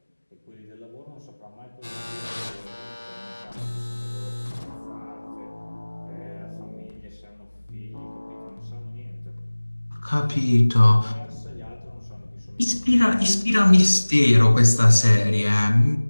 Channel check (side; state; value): both; inverted; correlation -1.00